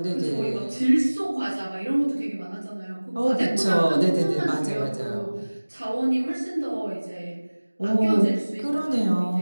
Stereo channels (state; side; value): inverted; both; correlation -1.00